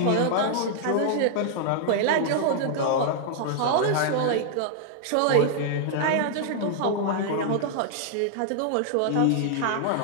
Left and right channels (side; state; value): both; different; correlation -0.01